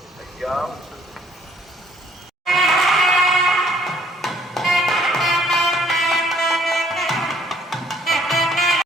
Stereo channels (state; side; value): normal; both; correlation 0.62